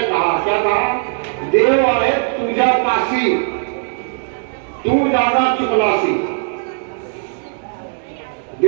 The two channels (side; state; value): left; silent; digital silence